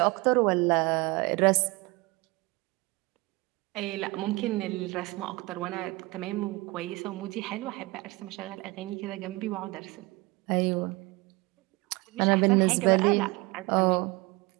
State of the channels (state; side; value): quieter; left; 23.6 dB